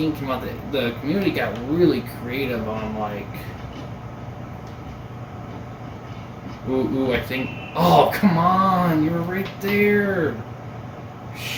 came out, the community got really creative on like. Ooh, I think. Oh, come on! You were right there.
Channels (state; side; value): identical; both; correlation 1.00